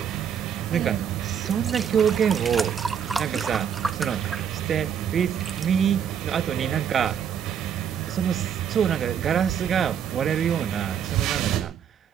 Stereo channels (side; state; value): left; quieter; 8.3 dB